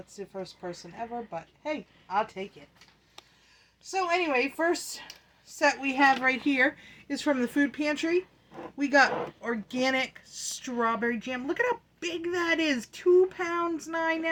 the first person ever, but hey, I'll take it. So anyway, first set we have right here is from the food pantry. We got organic strawberry jam. Look at how big that is. 2 pounds, 9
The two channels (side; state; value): both; identical; correlation 1.00